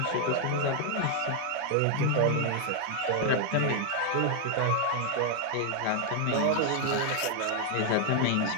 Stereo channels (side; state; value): both; different; correlation 0.00